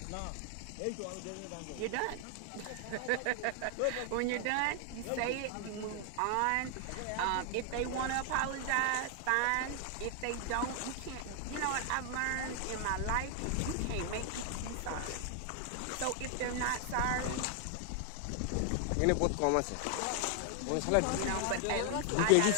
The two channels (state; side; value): different; both; correlation 0.00